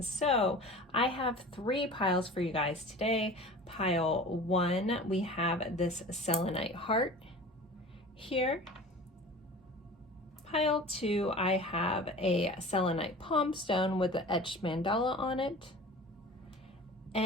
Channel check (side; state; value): both; normal; correlation 0.39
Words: So I have 3 piles for you guys today. Pile 1, we have this selenite heart here. Pile 2, I have a selenite palm stone with the etched mandala on it.